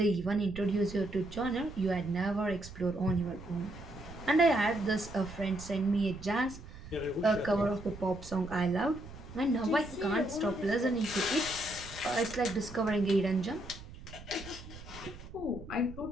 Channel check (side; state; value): right; noise; rumble, 15 dB below the sound